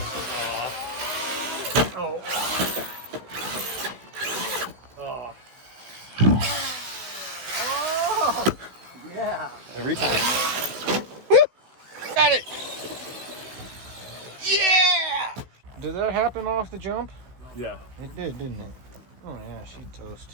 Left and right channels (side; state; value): left; late; 16 ms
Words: Oh. Oh. Oh! Yeah. Every time. Woo! Got it! Yeah! Did that happen off the jump? Yeah. It did, didn't it? Oh yeah, she'd